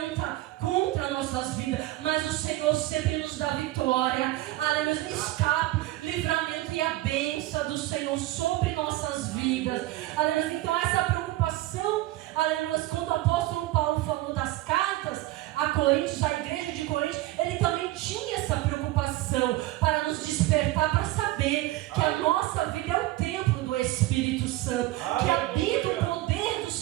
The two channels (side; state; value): left; quieter; 17.0 dB